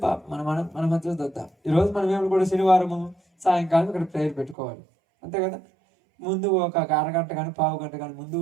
మన మధ్యలో చూద్దాం. ఈరోజు మనం ఏమి కూడా శనివారము సాయంకాలం ఇక్కడ ప్రేయర్ పెట్టుకోవాలి, అంతే కదా? ముందు ఒక అరగంట కానీ పావు గంట కానీ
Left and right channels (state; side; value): drops out; left; at 4.5 s